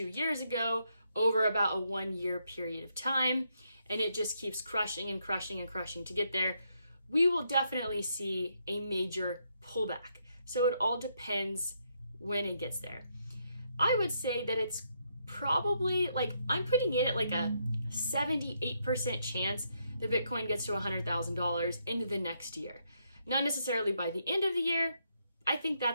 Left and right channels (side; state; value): both; inverted; correlation -0.77